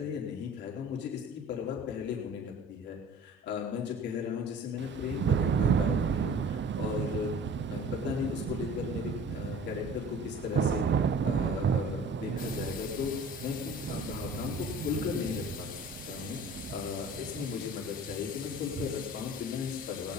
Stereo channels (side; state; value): both; normal; correlation 0.45